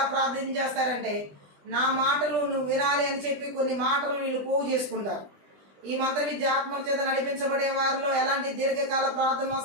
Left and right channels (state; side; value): late; left; 20 ms